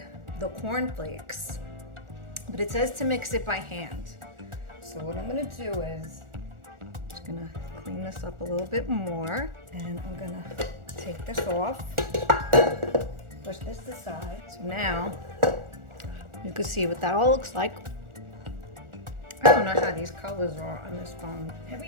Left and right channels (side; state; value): left; late; 1.4 ms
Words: the cornflakes, but it says to mix it by hand. So what I'm gonna do is, I'm just gonna clean this up a little bit more, and I'm gonna take this off, push this aside. So now, you can see what that all looks like. I don't know how these colors are on this phone.